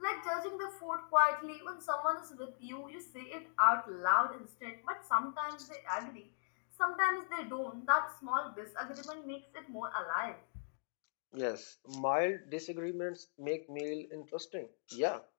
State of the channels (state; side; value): silent; right; digital silence